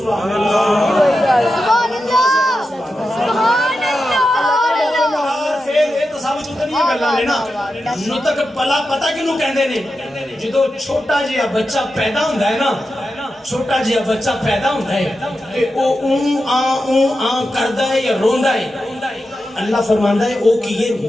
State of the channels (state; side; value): normal; both; correlation 0.90